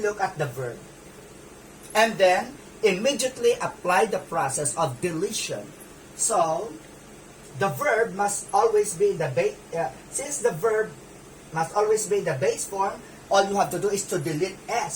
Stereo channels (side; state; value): both; identical; correlation 1.00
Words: at the verb. And then, immediately apply the process of deletion. So, the verb must always be in the base, since the verb must always be in the base form, all you have to do is to delete